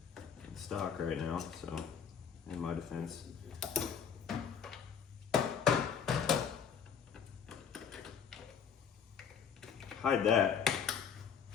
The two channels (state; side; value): quieter; right; 7.4 dB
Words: Stock right now, so in my defense. Hide that.